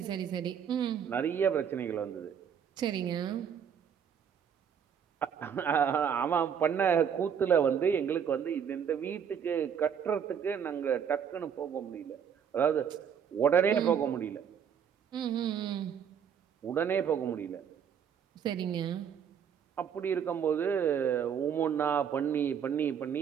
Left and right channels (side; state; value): left; quieter; 7.9 dB